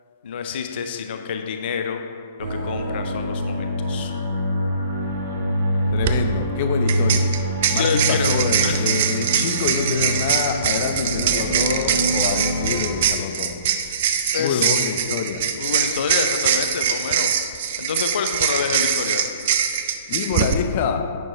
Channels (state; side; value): inverted; both; correlation -0.49